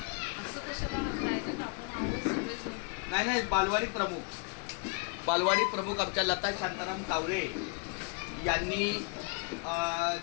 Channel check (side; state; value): right; quieter; 35.3 dB